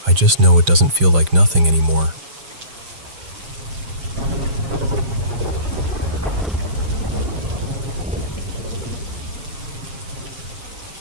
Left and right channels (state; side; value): late; left; 7.2 ms